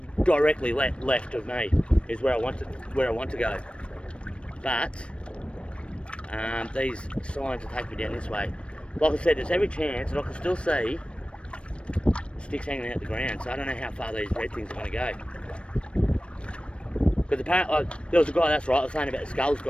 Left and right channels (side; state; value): right; late; 0.059 ms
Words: directly left of me is where I want to go. But these signs will take me down this way. Like I said, there's every chance that I can still see sticks hanging out the ground, so I don't know how far these red things are going to go. Because apparently, there was a guy, that's right, I was saying about the skulls